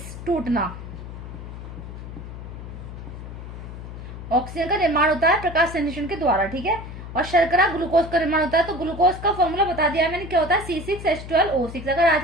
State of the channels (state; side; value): noise; left; hum, 11 dB below the sound